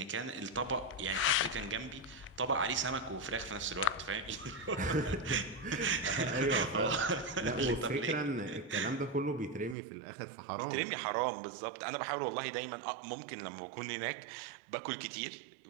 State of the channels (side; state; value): left; drops out; at 9.8 s